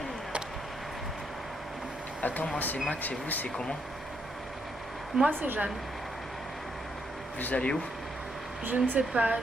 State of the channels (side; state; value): both; normal; correlation 0.76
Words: Attends, moi c'est Max et vous c'est comment? Moi, c'est Jeanne. Vous allez où? Je ne sais pas,